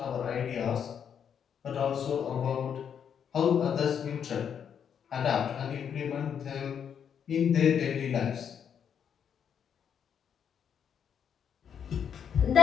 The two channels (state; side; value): quieter; right; 8.0 dB